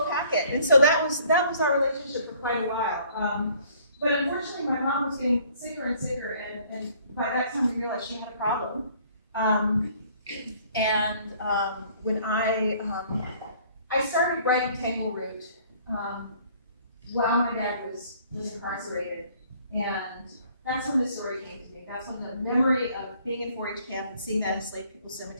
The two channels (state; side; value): inverted; both; correlation -0.58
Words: packet, and so that was our relationship for quite a while. But unfortunately, my mom was getting sicker and sicker, and by that time we realized she had a problem. When I started writing Tangle Root while my dad was incarcerated, and that's when this story came to me. That's when the memory of being in 4-H camp and seeing that enslaved people's